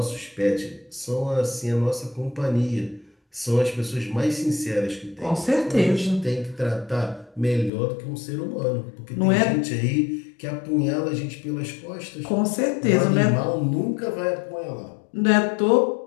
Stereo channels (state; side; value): drops out; right; at 7.7 s